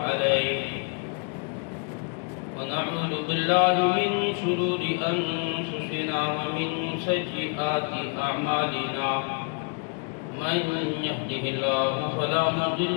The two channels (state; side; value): quieter; right; 37.9 dB